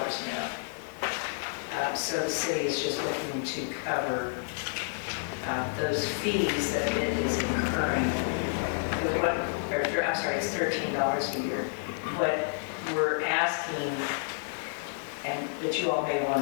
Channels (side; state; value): right; silent; 58 dB below the other